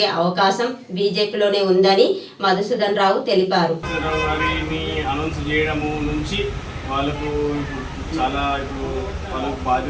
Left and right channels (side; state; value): both; identical; correlation 1.00